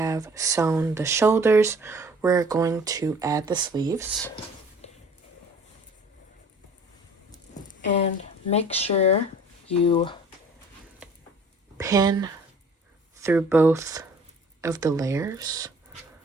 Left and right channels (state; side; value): normal; both; correlation 0.50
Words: sewn the shoulders, we're going to add the sleeves. And make sure you pin through both of the layers